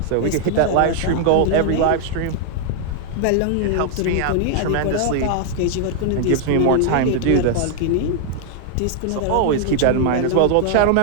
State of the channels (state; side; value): different; both; correlation 0.00